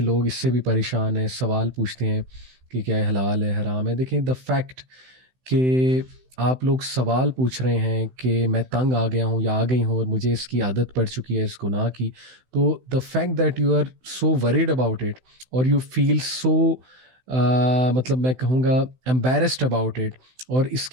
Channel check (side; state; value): left; late; 16 ms